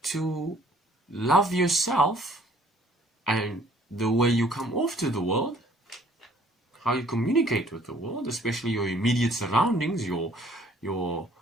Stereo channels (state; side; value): normal; both; correlation 0.59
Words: to love yourself and the way you come off to the world? How you communicate with the world, especially your immediate surroundings, your